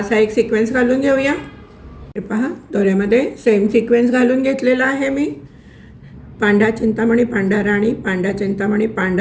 एक सिक्वेन्स घालून घेऊया. हे पहा, दोऱ्यामध्ये सेम सिक्वेन्स घालून घेतलेला आहे मी. पांढरा चिंतामणी, पांढरा राणी, पांढरा चिंतामणी,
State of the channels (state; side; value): identical; both; correlation 1.00